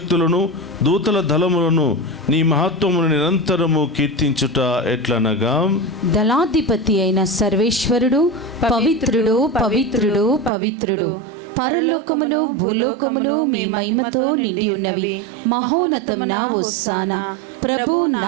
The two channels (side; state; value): left; drops out; at 10.5 s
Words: దూతల దళములను నీ మహత్వమును నిరంతరము కీర్తించుట ఎట్లనగా, దళాధిపతి అయిన సర్వేశ్వరుడు పవిత్రుడు, పవిత్రుడు, పవిత్రుడు. పరలోకములు భూలోకములు మీ మహిమతో నిండి ఉన్నవి. మహోన్నతమున హోసానా. ప్రభు